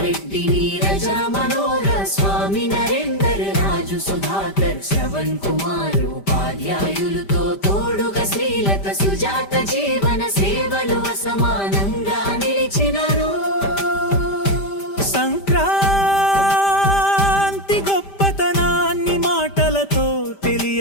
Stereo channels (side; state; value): right; late; 5.1 ms